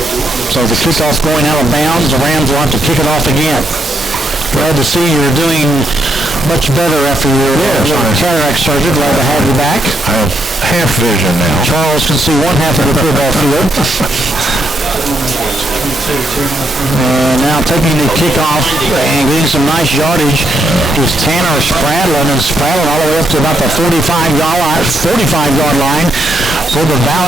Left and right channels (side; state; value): both; normal; correlation 0.76